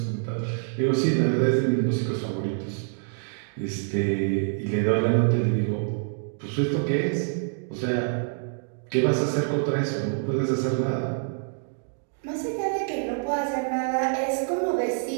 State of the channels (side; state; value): left; silent; digital silence